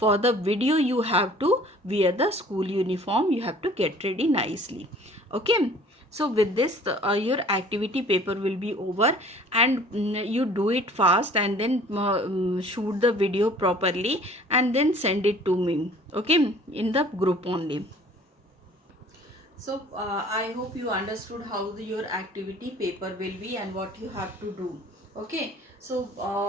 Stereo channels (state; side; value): normal; both; correlation 0.51